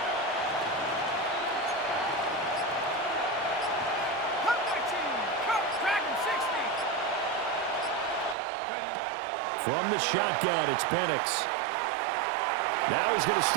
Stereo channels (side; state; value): left; drops out; at 8.3 s